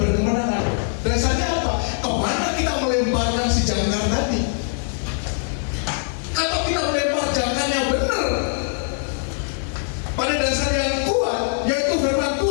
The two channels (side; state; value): right; silent; 62 dB below the other